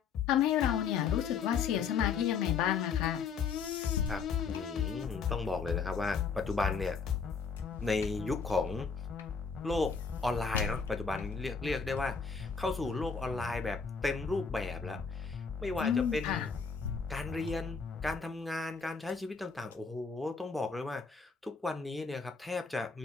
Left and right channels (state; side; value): quieter; right; 5.6 dB